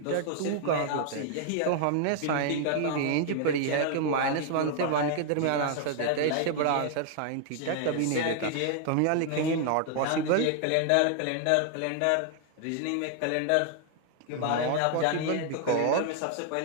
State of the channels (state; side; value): different; both; correlation 0.00